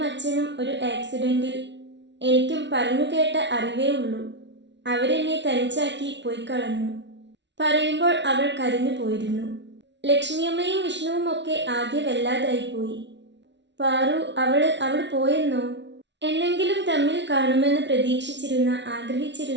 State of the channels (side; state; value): left; late; 0.51 ms